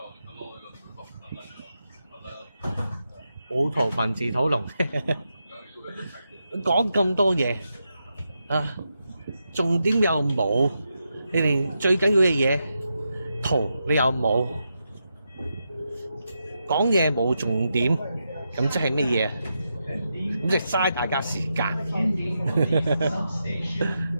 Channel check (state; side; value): inverted; both; correlation -0.86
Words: 冇圖文字討論，講咁多嘢啊，重點又冇。你連最緊要嘅嘢圖你又冇，講嘢冇重點，咁即係乜嘢？咁即係嘥大家時間。